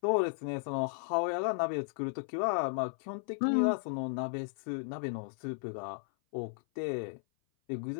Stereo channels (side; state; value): right; silent; 55 dB below the other